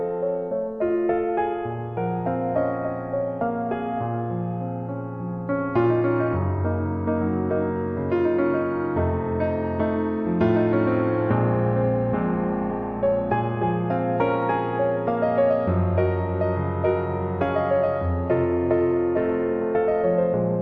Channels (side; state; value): both; identical; correlation 1.00